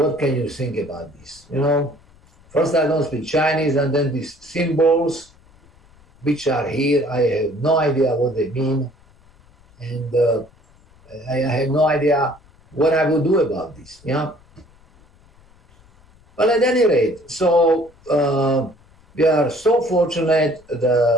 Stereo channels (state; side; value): noise; left; rumble, 29 dB below the sound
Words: can you think about this? First I don't speak Chinese, and then these symbols which are here, I have no idea what they mean. And I have no idea what I will do about this. Yeah. But at any rate, so we are so fortunate.